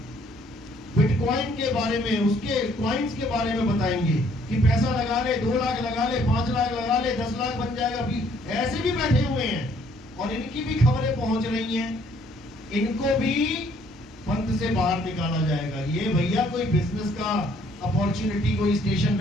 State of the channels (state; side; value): normal; both; correlation 0.63